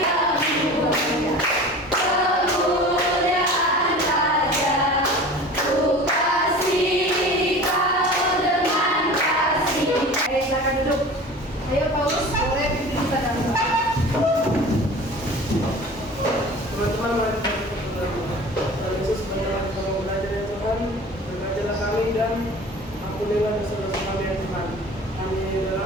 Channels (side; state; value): both; normal; correlation 0.39